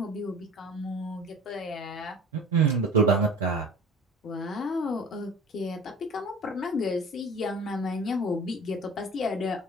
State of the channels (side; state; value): both; normal; correlation 0.42